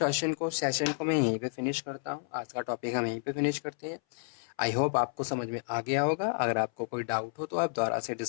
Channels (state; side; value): silent; right; 57 dB below the other